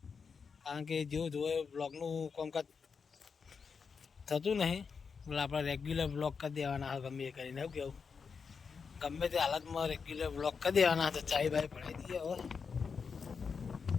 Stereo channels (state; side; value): quieter; right; 5.7 dB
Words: કારણ કે જેવું જોવે બ્લોગનું કામકાજ થતું નહીં એટલે આપણે રેગ્યુલર બ્લોગ કરી દેવાના ગમે એ કરીને. એવું કેવું ગમે તે હાલતમાં રેગ્યુલર બ્લોગ કરી દેવાના. તો ચાય બાય પડાવી દઈએ. હવે